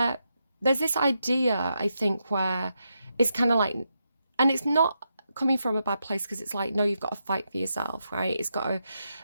there's this idea, I think, where it's kind of like, and it's not coming from a bad place, because it's like, no, you've got to fight for yourself, right?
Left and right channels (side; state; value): both; inverted; correlation -0.84